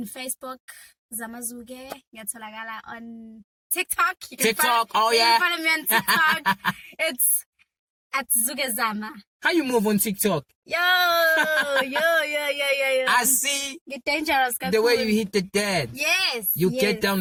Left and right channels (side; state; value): both; identical; correlation 1.00